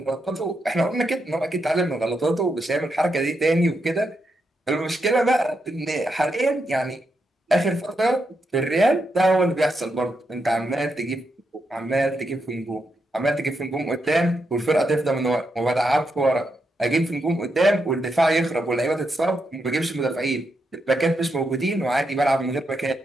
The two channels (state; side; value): normal; both; correlation 0.83